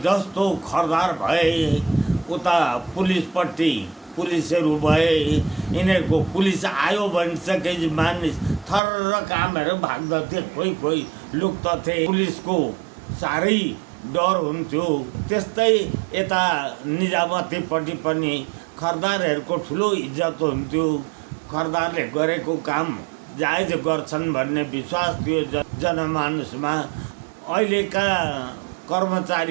जस्तो खरदार भए उता पुलिसपट्टि पुलिसहरू भए, यिनीहरूको पुलिस आयो भनिसकेपछि मानिस थर्र कामहरू भाग्दथे, कोही लुक्दथे। पुलिसको साह्रै डर हुन्थ्यो। त्यस्तै यता निजामतीपट्टि पनि खरदारहरूको ठुलो इज्जत हुन्थ्यो। खरदारले गरेको काम जायज गर्छन् भन्ने विश्वास थियो जनमानसमा। अहिलेका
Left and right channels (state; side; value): drops out; left; at 8.8 s